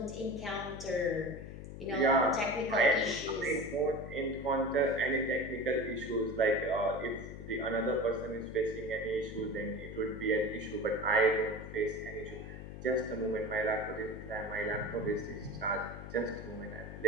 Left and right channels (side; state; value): left; noise; hum, 11 dB below the sound